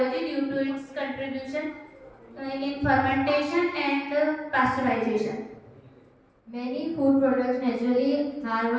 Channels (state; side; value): identical; both; correlation 1.00